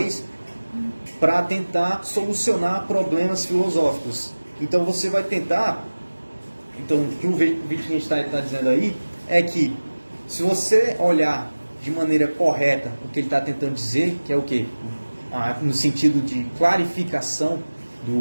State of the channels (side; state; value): both; inverted; correlation -1.00